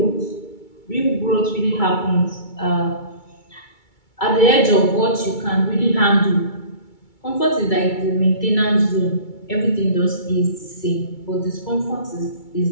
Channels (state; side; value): late; right; 2.3 ms